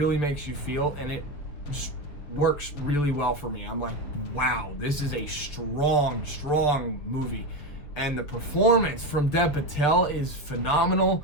makes you feel, and it just works really well for me. I'm like, wow, this is a strong, strong movie. And the performance from Dev Patel is phenomenal.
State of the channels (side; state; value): right; late; 7.0 ms